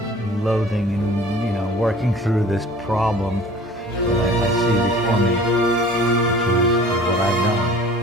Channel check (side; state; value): both; normal; correlation 0.46